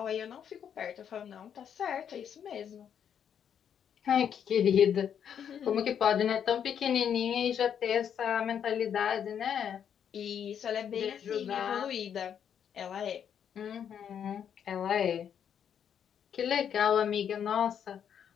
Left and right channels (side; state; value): right; quieter; 8.4 dB